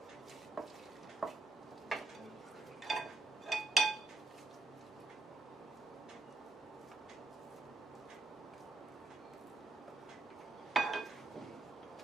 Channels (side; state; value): left; quieter; 3.1 dB